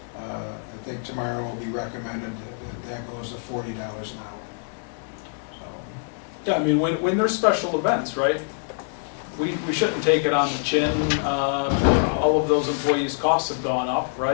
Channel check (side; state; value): right; silent; digital silence